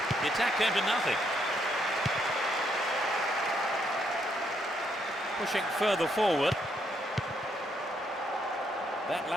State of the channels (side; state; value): both; normal; correlation 0.74